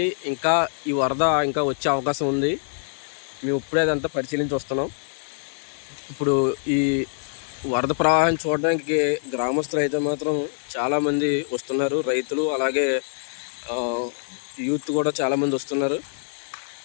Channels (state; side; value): silent; right; digital silence